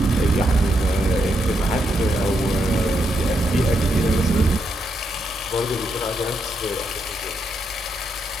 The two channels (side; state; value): both; normal; correlation 0.81